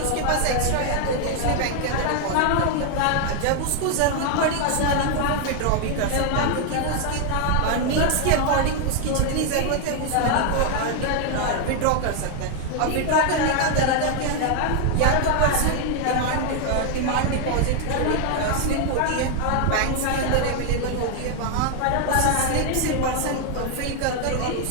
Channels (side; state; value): both; different; correlation 0.00